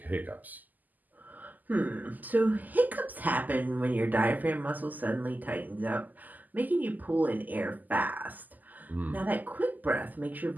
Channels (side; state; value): left; late; 0.083 ms